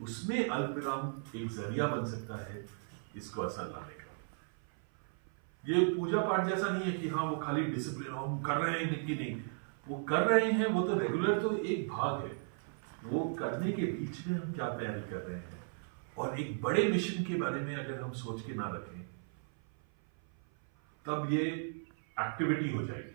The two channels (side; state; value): left; silent; 54 dB below the other